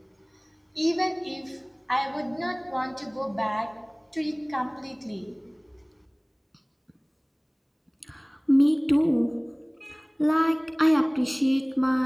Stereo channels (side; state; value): both; identical; correlation 1.00